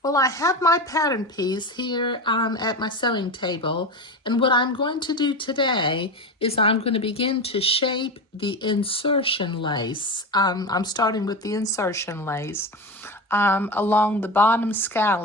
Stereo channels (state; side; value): normal; both; correlation 0.23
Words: Well, I have my pattern piece here at my sewing table, and what I'm going to do today is I'm going to begin to shape the insertion lace. I'm starting with the insertion lace along the bottom